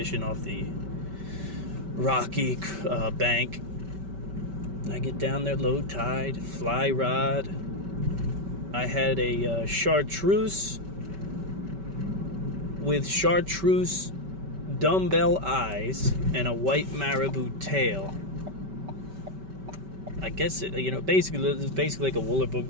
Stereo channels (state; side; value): late; left; 5.2 ms